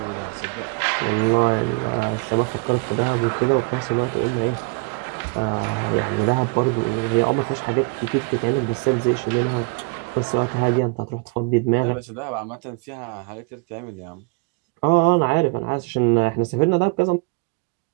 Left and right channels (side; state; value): left; quieter; 31.2 dB